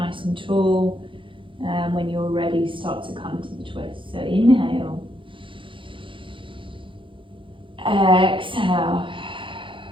and tall. And when you're ready, start to come to the twist. So inhale. Exhale.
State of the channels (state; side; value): late; left; 0.25 ms